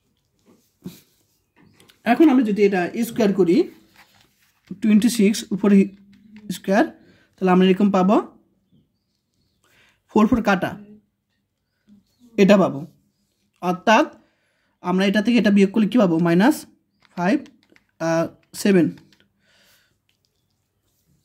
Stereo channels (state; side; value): identical; both; correlation 1.00